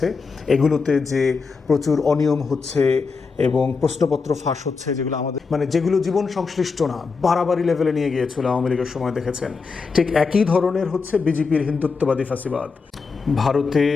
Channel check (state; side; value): quieter; right; 4.8 dB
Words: এগুলোতে যে প্রচুর অনিয়ম হচ্ছে এবং প্রশ্নপত্র ফাঁস হচ্ছে, যেগুলো আমাদের যেগুলো জীবন সংশ্লিষ্ট না, বাড়াবাড়ি লেভেলে নিয়ে গিয়েছিল আওয়ামী লীগের সময় দেখেছেন। ঠিক একই ধরনের হচ্ছে বিজেপির হিন্দুত্ববাদী ফাঁসিবাদ। ভারতে